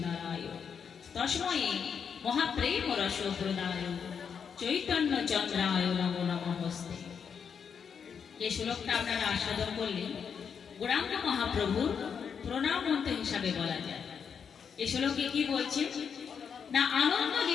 তস্মৈ মহাপ্রেম রস প্রদায় চৈতন্য চন্দ্রায় নমো নমস্তে। এই শ্লোকটা আপনারা আস্বাদন করলেন গৌরাঙ্গ মহাপ্রভুর প্রণাম মন্ত্র হিসাবে বলা যায়। এই শ্লোকে কি বলছে না আনন্দ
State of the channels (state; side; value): quieter; right; 6.9 dB